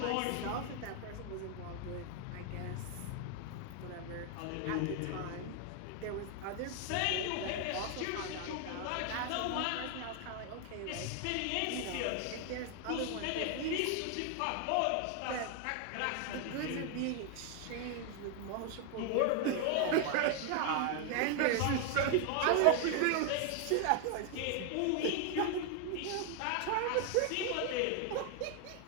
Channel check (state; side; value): different; both; correlation 0.00